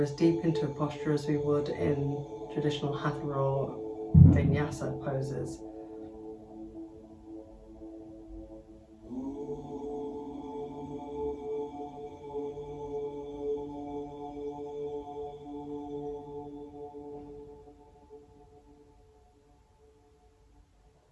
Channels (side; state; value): both; identical; correlation 1.00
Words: deep into a posture as we would in traditional Hatha or Vinyasa poses.